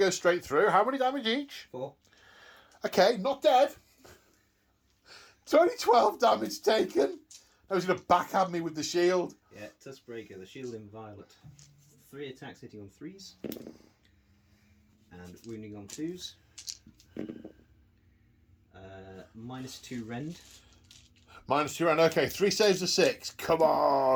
straight through. How many damage each? 4. Okay, not dead. It's only 12 damage taken. I was going to backhand me with the shield. Yeah, Tuskbreaker, the shield in violet. 3 attacks hitting on 3s. And wounding on 2s. -2 rend. -2 round. Okay, 3 saves of 6. Come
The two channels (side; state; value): both; identical; correlation 1.00